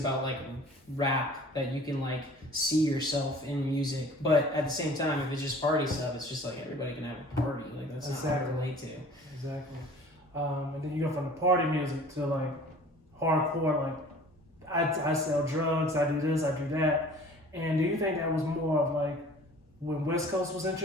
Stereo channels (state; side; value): normal; both; correlation 0.47